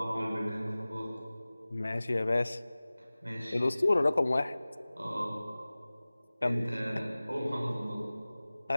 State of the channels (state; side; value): inverted; both; correlation -0.98